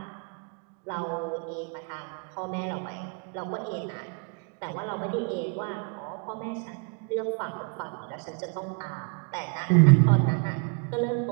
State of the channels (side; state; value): left; quieter; 38.0 dB